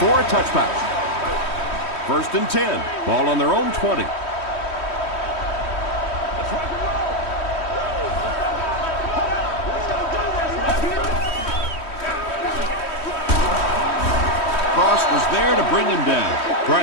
a touchback. 1st and 10. Ball on their own 20. Cross was there to bring him down.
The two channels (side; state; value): right; late; 3.1 ms